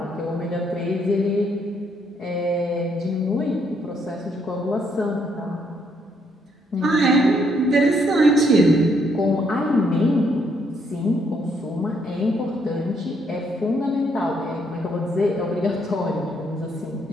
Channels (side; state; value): both; normal; correlation 0.72